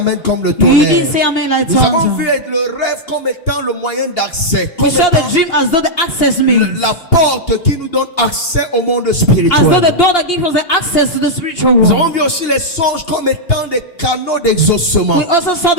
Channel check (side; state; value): right; late; 2.8 ms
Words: comme le You tonnerre. didn't say amen like Nous avons tongues. vu le rêve comme étant le moyen d'accès. Comme We saw étant the dream as though the access means. la porte qui nous donne accès au monde As though the spirituel. door that gives us the access to the spiritual Nous avons world. vu aussi les songes comme étant des canaux d'exaucement. We also saw